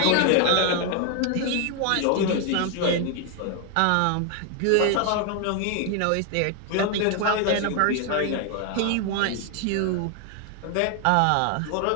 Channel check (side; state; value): both; different; correlation 0.01